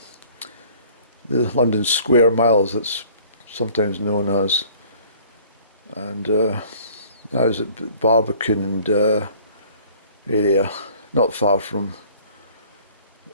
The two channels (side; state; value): both; inverted; correlation -0.53